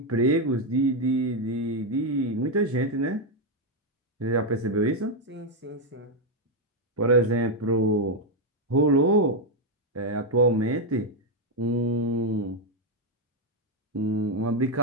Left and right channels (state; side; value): normal; both; correlation 0.02